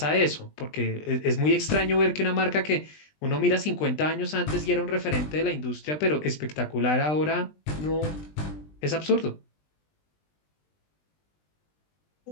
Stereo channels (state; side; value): late; right; 20 ms